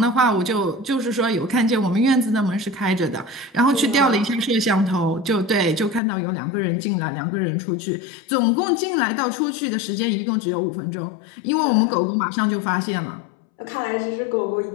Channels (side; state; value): right; drops out; at 6.0 s